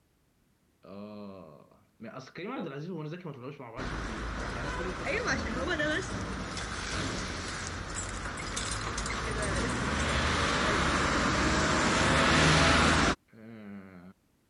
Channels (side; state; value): both; identical; correlation 1.00